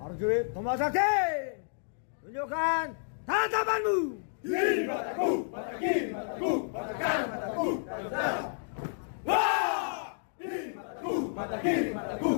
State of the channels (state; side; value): silent; right; digital silence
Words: Prajurit Tomasaki, tunjukkan tatapanmu. Kiri mataku, mata kiri mataku, mata kanan mataku, saudara. Wah! Kiri mataku, mata kiri mataku,